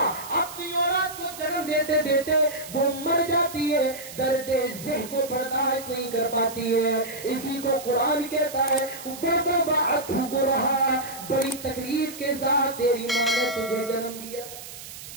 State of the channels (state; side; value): noise; right; hiss, 13 dB below the sound